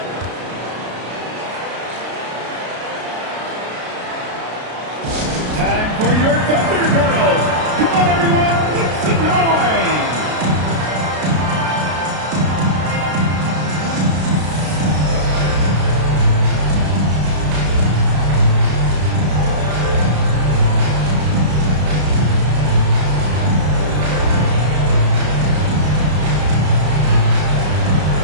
Time for your Thunder Girls. Come on, everyone. It's the noise.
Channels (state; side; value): late; left; 33 ms